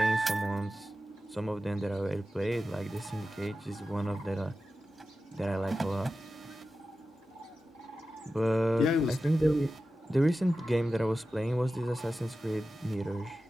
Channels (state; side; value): normal; both; correlation 0.93